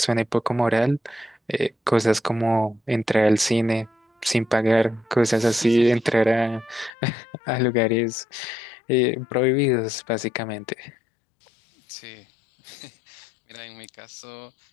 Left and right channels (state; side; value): drops out; right; at 6.9 s